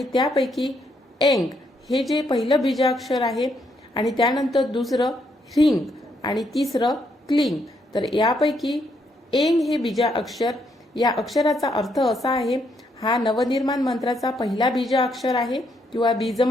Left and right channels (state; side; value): normal; both; correlation 0.75